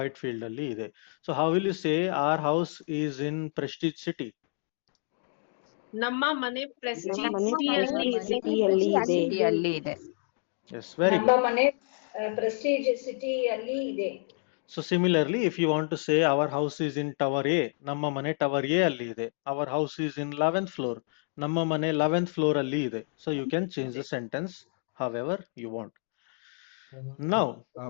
ಅಲ್ಲಿ ಇದೆ. So how will you say our house is in Prestige City? ನಮ್ಮ ಮನೆ ಪ್ರೆಸ್ಟೀಜ್ ನಮ್ಮ ಮನೆ ಸಿಟಿಯಲ್ಲಿ ಇದೆ. ಸಿಟಿಯಲ್ಲಿ ಇದೆ. ಸಿಟಿಯಲ್ಲಿ ಇದೆ. Yes, very ನಮ್ಮ good. ಮನೆ ಪ್ರೆಸ್ಟೀಜ್ ಸಿಟಿ ಅಲ್ಲಿ ಇದೆ. So similarly, if you want to say our house is in Tower A, ನಮ್ಮ ಮನೆ Tower A ಅಲ್ಲಿ ಇದೆ. Our house is in 11th floor. ನಮ್ಮ ಮನೆ 11th floor ಅಲ್ಲಿ ಇದೆ. So you can change the sentence however you want. Now,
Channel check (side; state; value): right; silent; 59 dB below the other